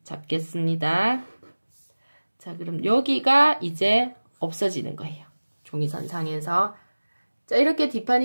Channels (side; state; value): both; inverted; correlation -1.00